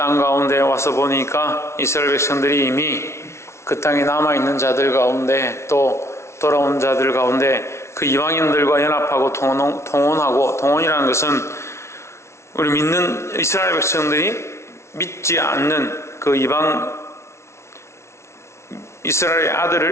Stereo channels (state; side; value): late; right; 0.13 ms